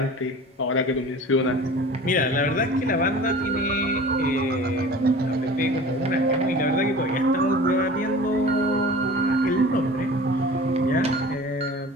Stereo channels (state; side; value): normal; both; correlation 0.40